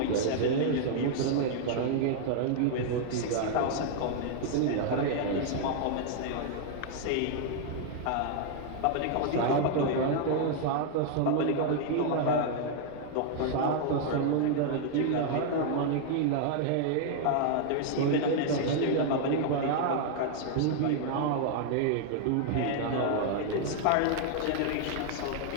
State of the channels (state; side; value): different; both; correlation 0.00